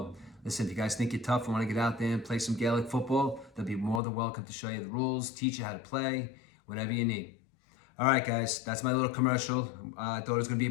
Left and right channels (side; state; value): right; drops out; at 4.0 s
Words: listen, if you guys think you're tough and want to get out there and play some Gaelic football, they'll be more than welcome to show you the rules, teach you how to play, whatever you need. All right, guys, that's my little commercial. I thought it was going to be